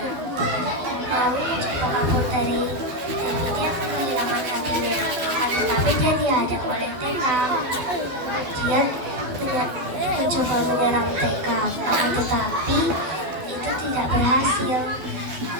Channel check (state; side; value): late; left; 12 ms